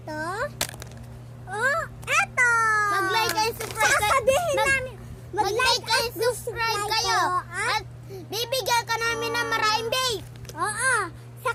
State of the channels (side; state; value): both; identical; correlation 1.00